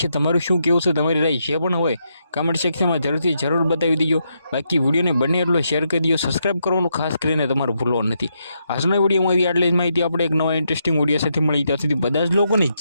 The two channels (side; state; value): both; inverted; correlation -0.80